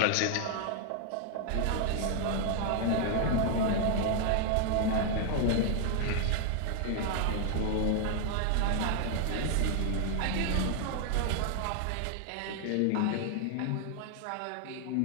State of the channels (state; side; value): different; both; correlation 0.00